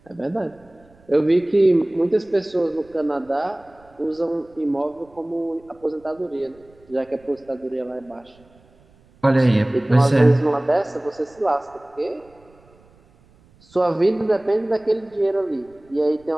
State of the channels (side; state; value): right; noise; rumble, 29 dB below the sound